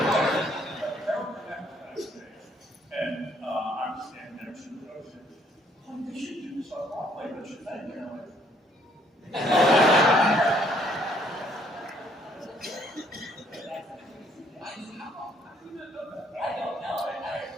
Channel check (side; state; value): both; normal; correlation 0.65